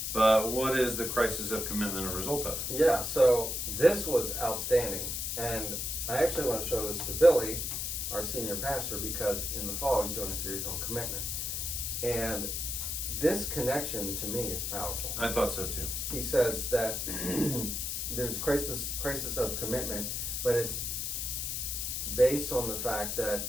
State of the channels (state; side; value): noise; left; hiss, 2 dB below the sound